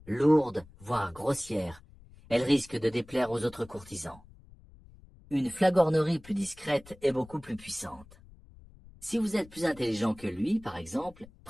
Lourde, voire grossière, elle risque de déplaire aux autres courtisans. Une flagornerie plus discrète est beaucoup plus puissante. Si vous êtes plus intelligent que lui, par exemple,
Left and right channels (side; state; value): left; noise; rumble, 23 dB below the sound